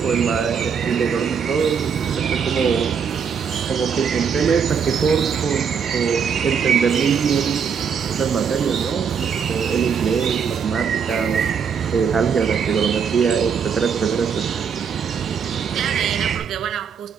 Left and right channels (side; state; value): left; quieter; 6.8 dB